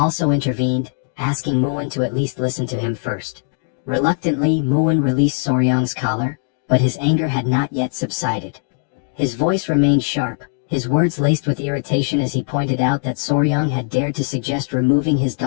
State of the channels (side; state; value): right; silent; digital silence